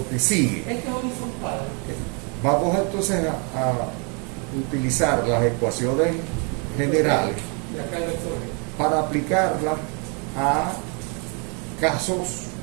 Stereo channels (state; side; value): quieter; left; 35.9 dB